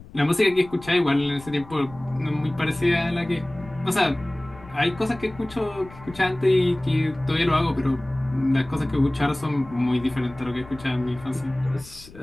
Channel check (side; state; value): left; noise; rumble, 20 dB below the sound